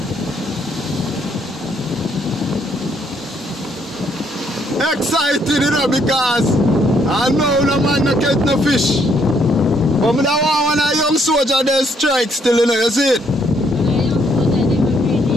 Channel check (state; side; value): normal; both; correlation 0.70